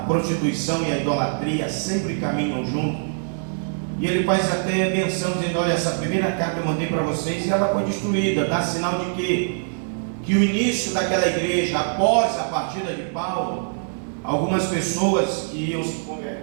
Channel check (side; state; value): left; silent; 63 dB below the other